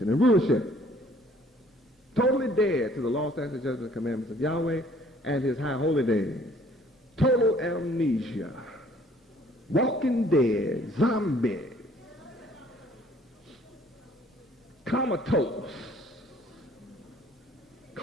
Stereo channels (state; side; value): normal; both; correlation 0.58